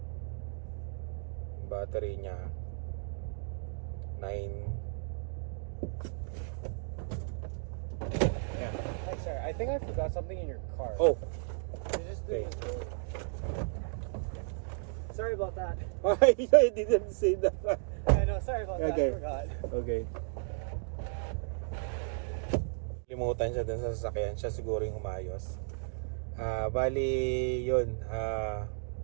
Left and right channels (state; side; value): silent; left; 55 dB below the other